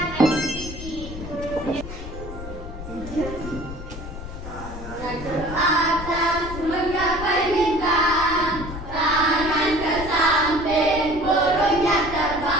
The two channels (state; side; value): noise; left; rumble, 10 dB below the sound